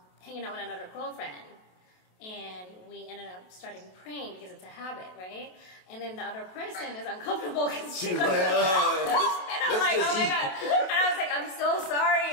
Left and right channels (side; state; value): right; late; 27 ms